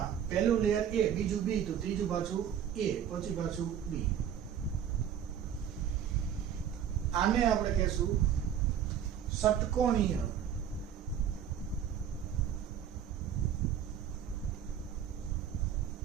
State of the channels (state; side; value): quieter; left; 9.1 dB